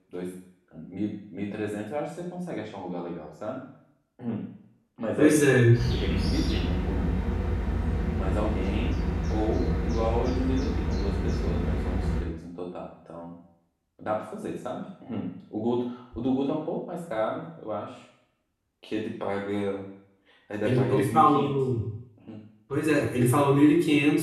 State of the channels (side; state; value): both; identical; correlation 1.00